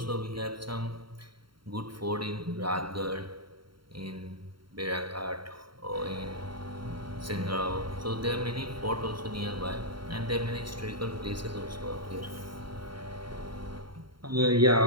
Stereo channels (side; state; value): left; late; 0.73 ms